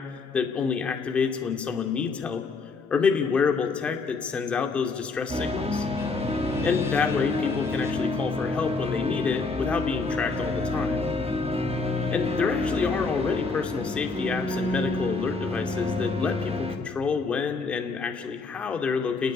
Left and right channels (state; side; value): quieter; right; 4.2 dB